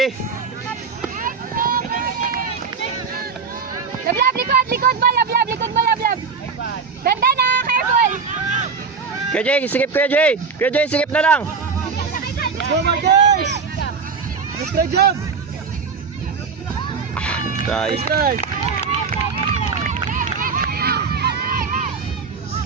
Lablab! Likod! Likod mo! Lablab! Likod mo! Lablab! Ganda na! Careful! Kuya Jay, sikip Kuya Jay. Kuya Jay, sikip na lang. Go, Marcus! Strike jump! Try. Strike!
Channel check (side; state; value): left; quieter; 5.3 dB